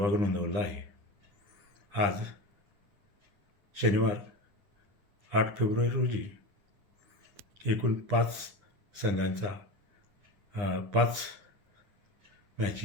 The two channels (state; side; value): late; left; 9.9 ms